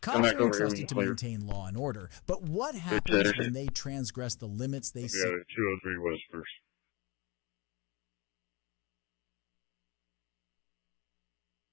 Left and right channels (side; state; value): right; quieter; 25.4 dB